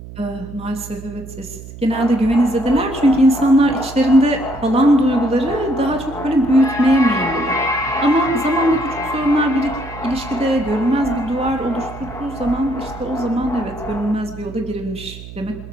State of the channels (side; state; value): right; noise; hum, 14 dB below the sound